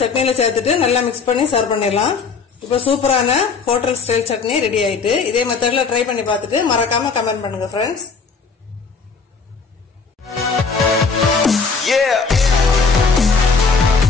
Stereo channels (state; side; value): quieter; right; 4.9 dB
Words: சட்னியில சேர்த்துட்டு நல்லா மிக்ஸ் பண்ணி சர்வ் பண்ணிடலாம். இப்ப சூப்பரான ஹோட்டல் ஸ்டைல் சட்னி ரெடி ஆயிட்டு. இதே மெத்தட்ல ட்ரை பண்ணி பார்த்துட்டு மறக்காம கமெண்ட் பண்ணுங்க ஃப்ரெண்ட்ஸ்.